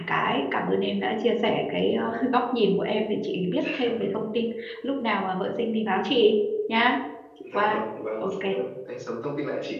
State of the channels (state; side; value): identical; both; correlation 1.00